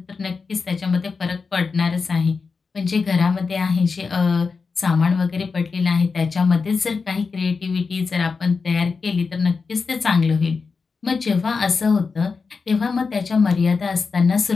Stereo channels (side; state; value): right; quieter; 4.8 dB